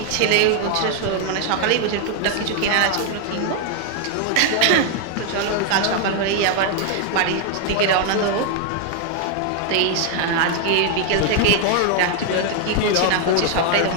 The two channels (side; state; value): both; different; correlation 0.00